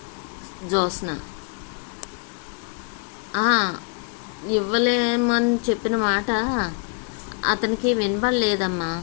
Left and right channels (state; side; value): quieter; right; 36.4 dB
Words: జ్యోత్స్న. ఇవ్వలేమని చెప్పిన మాట అతనికి వినబడలేదమ్మా.